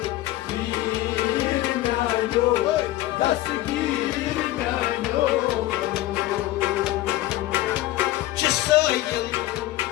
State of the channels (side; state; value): right; quieter; 15.8 dB